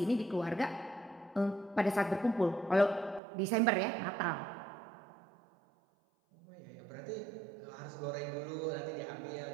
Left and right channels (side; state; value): left; drops out; at 3.2 s